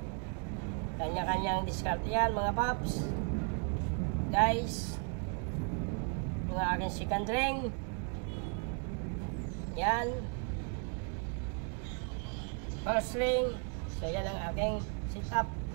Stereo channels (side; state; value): left; quieter; 39.5 dB